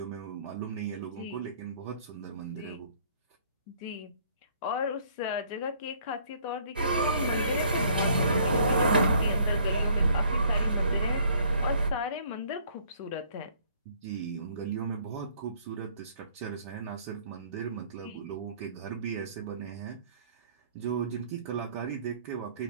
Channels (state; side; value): inverted; both; correlation -0.60